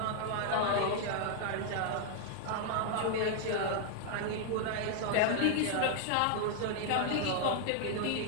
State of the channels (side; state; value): both; different; correlation 0.00